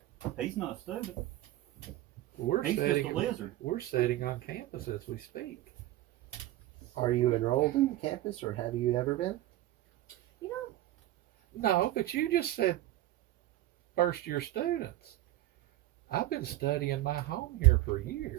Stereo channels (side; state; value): left; quieter; 15.2 dB